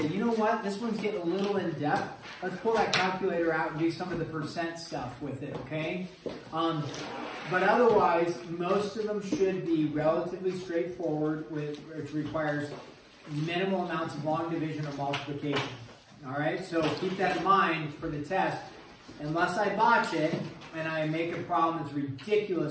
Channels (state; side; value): identical; both; correlation 1.00